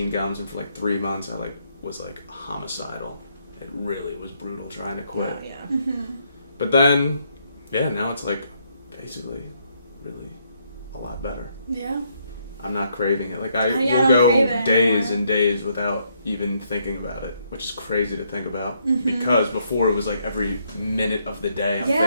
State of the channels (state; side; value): inverted; both; correlation -0.73